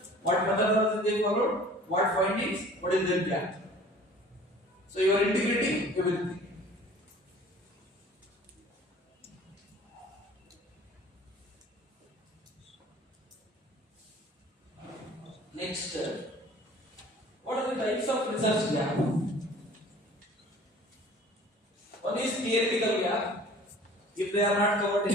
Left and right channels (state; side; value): normal; both; correlation 0.48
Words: What methodology they followed? What findings? What is their gap? So you are integrating everything. Next, what are the types of research gap? One is theoretical gap. If they are not covered